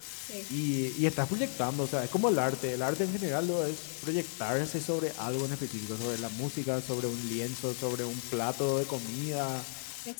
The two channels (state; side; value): silent; right; digital silence